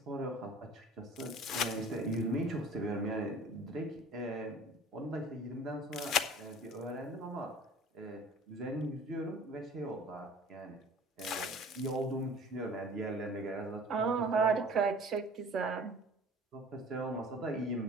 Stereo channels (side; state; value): both; normal; correlation 0.46